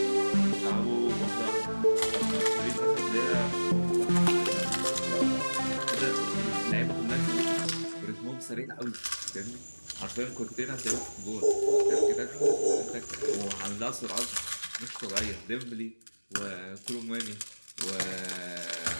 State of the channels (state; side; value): inverted; both; correlation -1.00